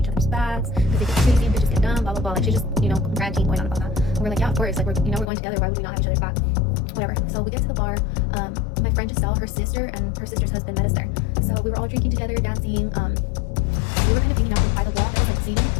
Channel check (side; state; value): right; drops out; at 5.2 s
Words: other's backs, because they get crazy and bitches get dumb, blah blah blah. Like she's just, ranting, going on about that. And we're like, yeah, of course, like we're going together, why would we not have each other's back? Whatever. So we get to the bar. My friend Giselle, her sister and her sister's husband met us there. So we were all drinking together, dancing. We were kind of hanging out by the wall that was like seating,